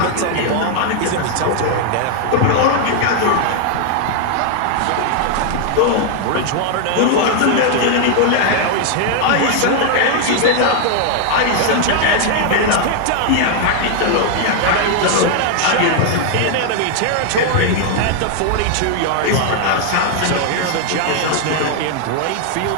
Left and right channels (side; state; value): both; different; correlation 0.00